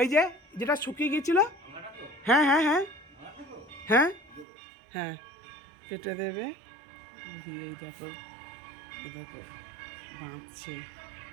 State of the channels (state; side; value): drops out; left; at 4.5 s